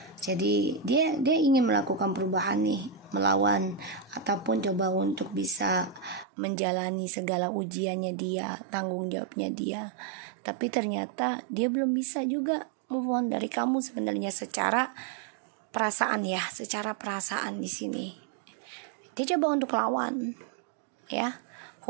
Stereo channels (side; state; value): left; drops out; at 6.2 s